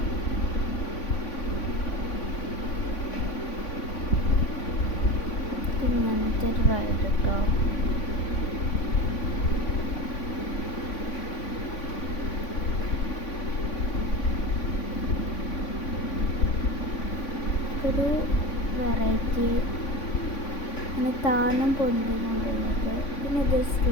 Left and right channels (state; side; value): late; right; 3.5 ms